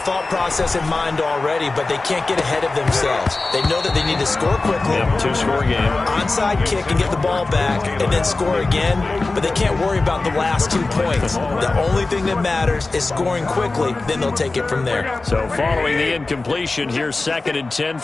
process in mind already, but they can't get ahead of themselves. They know that they need to score quickly. Yep, 2-score game. Onside kick and get the ball back and then score again, but they can't worry about the last 2 points. The only thing that matters is scoring quickly, then they'll take it from there. So following the incompletion, here's 2nd and 10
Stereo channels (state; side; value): quieter; right; 3.4 dB